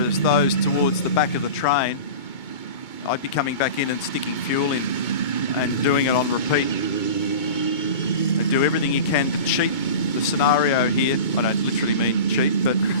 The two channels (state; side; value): late; right; 2.2 ms